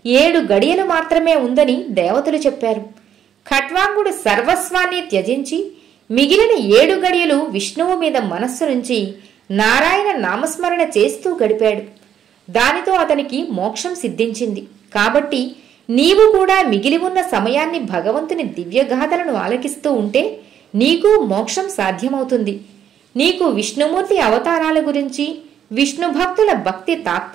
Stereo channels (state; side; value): quieter; left; 9.4 dB